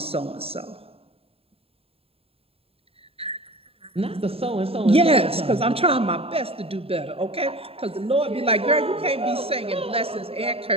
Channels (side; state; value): left; late; 0.28 ms